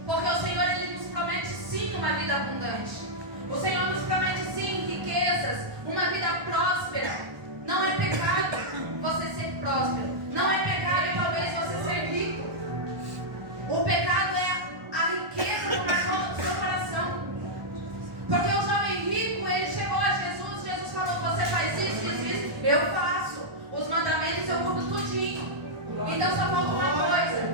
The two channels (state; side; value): late; left; 1.2 ms